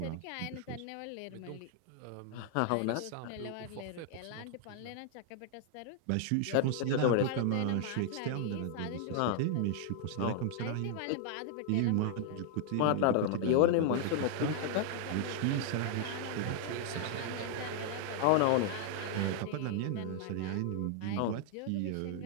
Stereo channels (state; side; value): different; both; correlation 0.00